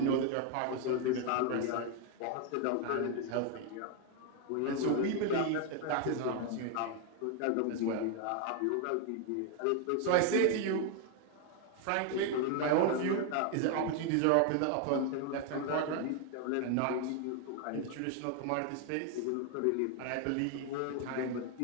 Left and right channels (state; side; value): different; both; correlation 0.01